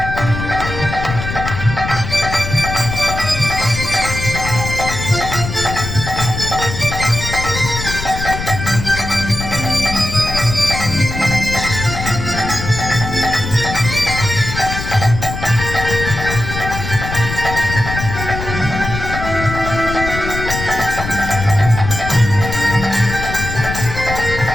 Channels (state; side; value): noise; left; rumble, 6 dB below the sound